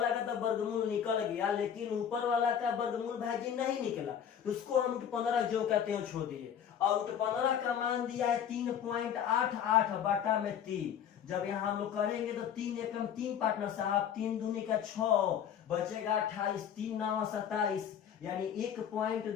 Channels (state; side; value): quieter; right; 8.8 dB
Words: का तो वर्गमूल निकल गया, लेकिन ऊपर वाला का वर्गमूल भाई जी नहीं निकला, तो उसको हम √15 जो कहते हैं छोड़ दिए। और √15 का मान दिया है 3.88/3। जब यहाँ हम लोग करेंगे तो 3 एकम 3 पार्टनर साहब, 3 दूनी का 6 बचेगा 28, 3 9 27, यानी